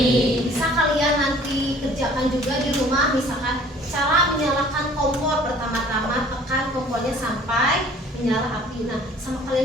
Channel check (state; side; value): normal; both; correlation 0.52